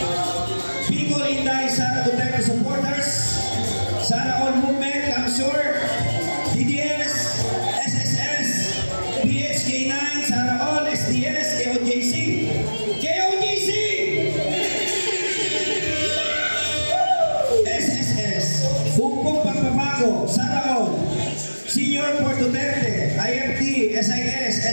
Bicol Inday Sara Duterte Supporters, Sara All Movement Council, DDS, SSS, PHK9, Sara All, SDS, KOJC, KOJC! SSS, Bukpong Pagpapago, Sara All, Senior for Duterte, IFT, SIS,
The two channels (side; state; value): both; inverted; correlation -1.00